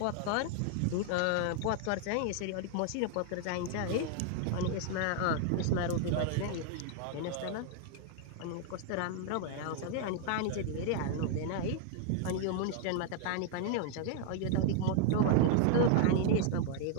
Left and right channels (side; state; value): both; different; correlation 0.00